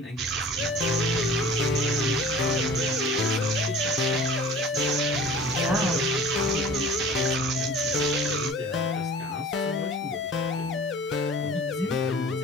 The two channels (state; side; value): normal; both; correlation 0.44